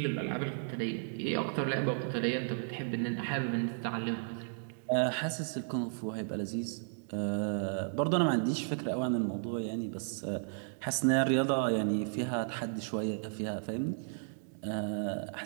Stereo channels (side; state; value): left; silent; digital silence